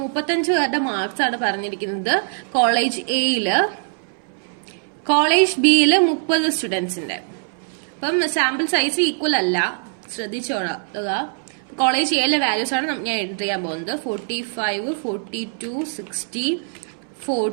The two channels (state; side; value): silent; left; 62 dB below the other